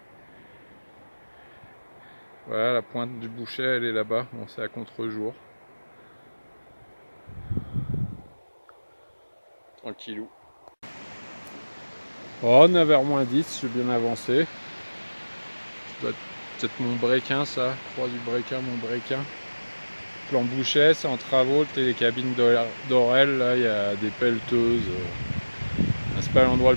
Voilà, la pointe du Bouchet elle est là-bas, bon c'est à contre-jour. Tranquillou. Oh, 9h-10, je suis bien avancé. Ça doit être peut-être mon breakin ça, croix du breakin, mon breakin. Plan Bouchet, c'est en travaux, le télécabine d'Orel, là il y a des pelleteuses. C'est pas l'endroit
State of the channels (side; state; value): both; inverted; correlation -1.00